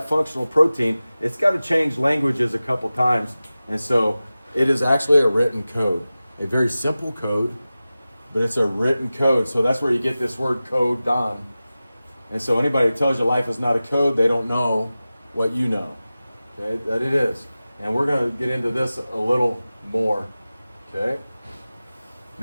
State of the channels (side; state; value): both; inverted; correlation -0.96